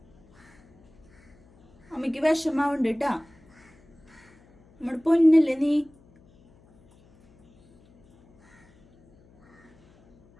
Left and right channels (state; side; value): noise; left; hum, 30 dB below the sound